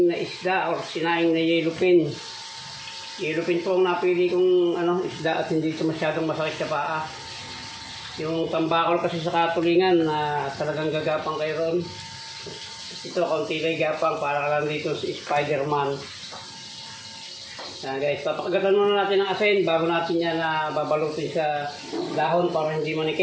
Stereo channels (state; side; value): identical; both; correlation 1.00